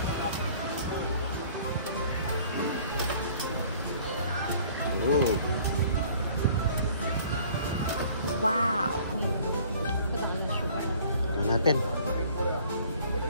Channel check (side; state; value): both; inverted; correlation -0.54